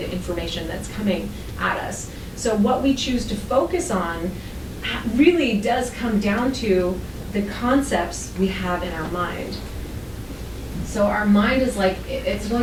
information that's coming at us. So what we choose to focus on really does come down to the concepts we have in our mind. So our mind is like, it's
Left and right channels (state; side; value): identical; both; correlation 1.00